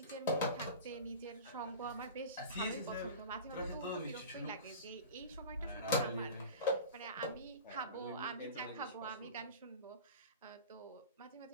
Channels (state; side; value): inverted; both; correlation -0.35